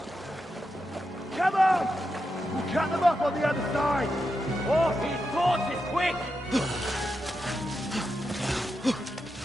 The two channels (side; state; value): both; normal; correlation 0.87